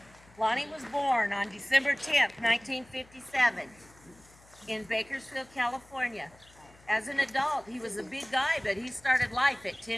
Lonnie was born on December 10th, 1957 in Bakersfield, California. As an adult, he was a big guy, but he started life at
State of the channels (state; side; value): noise; left; hum, 26 dB below the sound